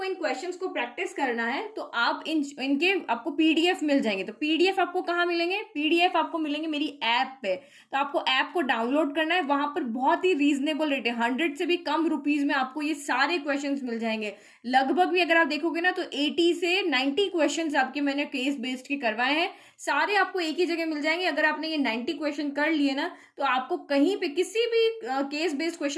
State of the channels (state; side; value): identical; both; correlation 1.00